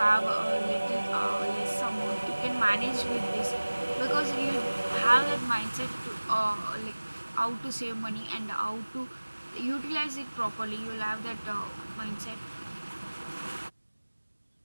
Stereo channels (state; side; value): inverted; both; correlation -1.00